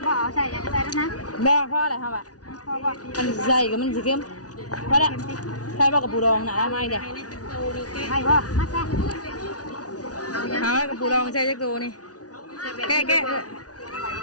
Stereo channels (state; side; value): late; right; 0.68 ms